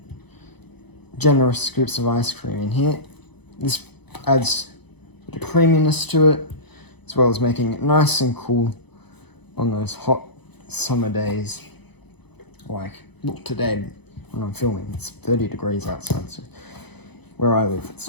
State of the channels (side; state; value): right; late; 0.98 ms